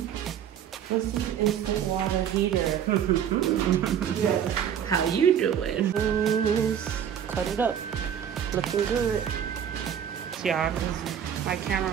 What's this instant water heater? How you doing? Cut it up. Looking good. Y'all, my camera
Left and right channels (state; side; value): quieter; left; 9.0 dB